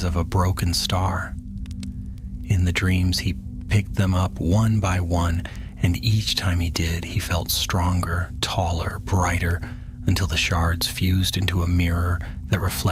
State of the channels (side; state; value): both; identical; correlation 1.00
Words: of a broken star. In the dreams he picked them up one by one, and each time he did, he felt stronger, taller, brighter, until the shards fused into a mirror that